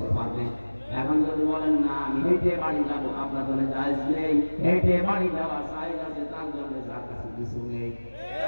পারবেন। এখন যদি বলেন না আমি হেঁটে বাড়ি যাবো, আপনার জন্য জায়েজ নেই। হেঁটে বাড়ি যাওয়া জায়েজ আছে, তার জন্য যার কাছে কিছু নেই।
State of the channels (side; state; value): both; inverted; correlation -1.00